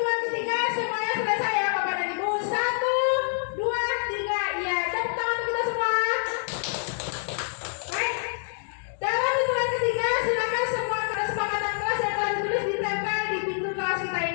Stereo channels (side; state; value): right; silent; 60 dB below the other